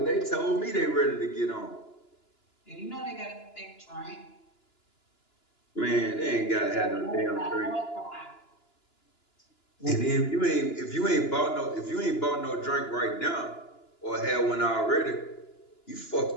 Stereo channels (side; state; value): right; late; 2.9 ms